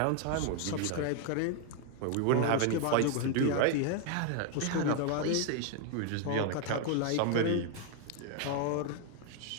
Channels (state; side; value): different; both; correlation 0.00